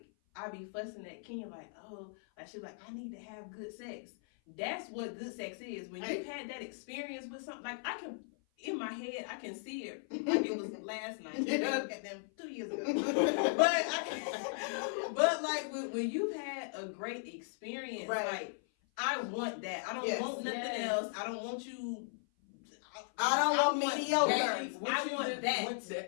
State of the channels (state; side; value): silent; right; 53 dB below the other